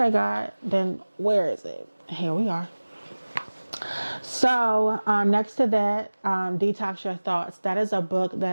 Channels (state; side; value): inverted; both; correlation -1.00